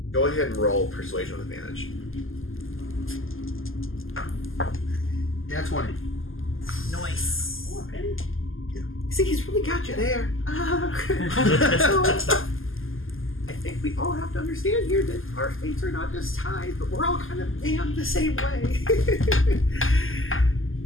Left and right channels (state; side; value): late; right; 0.59 ms